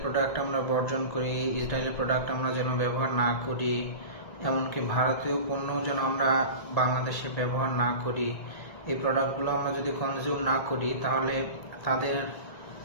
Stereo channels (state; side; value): late; right; 1.8 ms